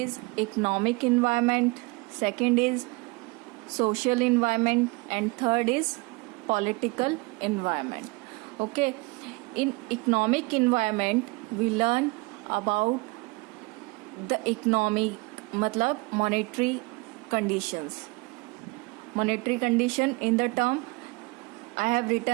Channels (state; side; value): quieter; left; 25.8 dB